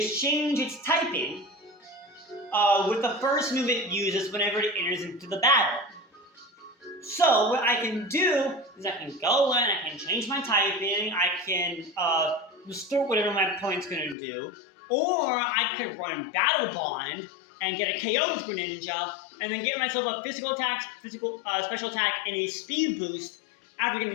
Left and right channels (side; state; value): right; drops out; at 14.2 s